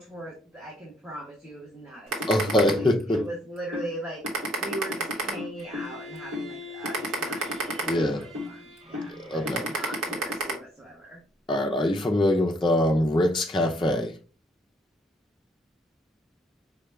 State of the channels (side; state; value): both; normal; correlation 0.67